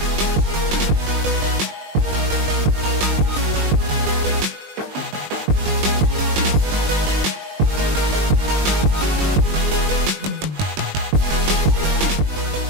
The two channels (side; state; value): left; late; 20 ms